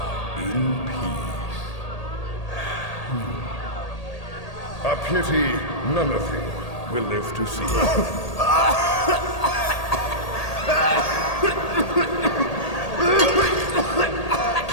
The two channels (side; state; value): right; late; 1.8 ms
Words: in peace. A pity none of you will live to see it.